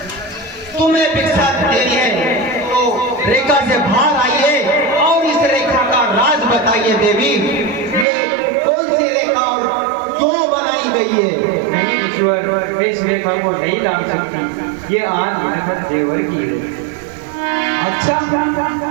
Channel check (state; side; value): drops out; left; at 8.1 s